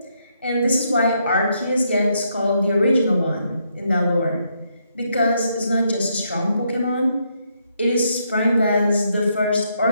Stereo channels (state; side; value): inverted; both; correlation -0.76